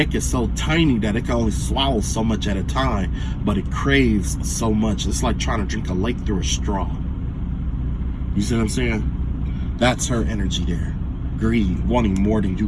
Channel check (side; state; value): both; identical; correlation 1.00